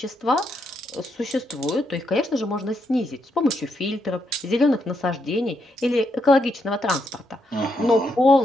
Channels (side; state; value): both; normal; correlation 0.79